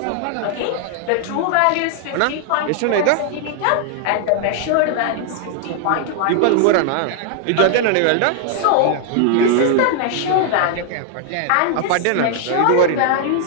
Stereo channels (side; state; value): both; different; correlation 0.00